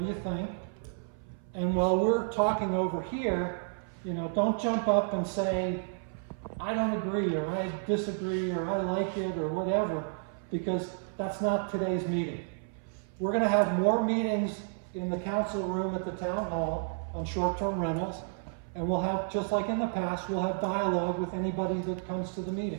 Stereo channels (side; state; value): left; silent; 57 dB below the other